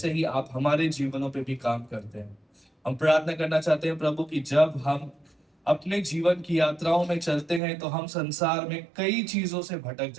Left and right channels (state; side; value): drops out; left; at 7.6 s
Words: ही आप हमारे जीवनों पे भी काम करते हैं। हम प्रार्थना करना चाहते हैं प्रभु कि जब हम अपने जीवन की यात्राओं में चलते हैं तो हम संसार में कई चीजों से भटक